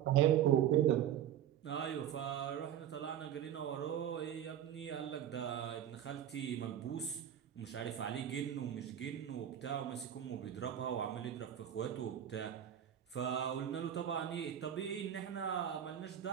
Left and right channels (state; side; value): quieter; left; 10.3 dB